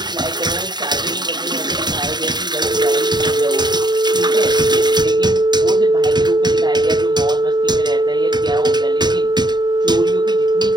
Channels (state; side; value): late; left; 0.21 ms